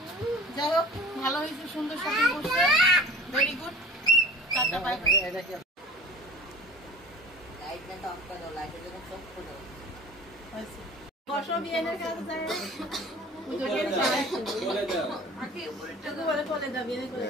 যাই হোক, ভালো হয়েছে, সুন্দর শপিং করছে, very good. Tata, bye bye. বসো, বিয়েনের কাছে যায়।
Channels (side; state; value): both; normal; correlation 0.42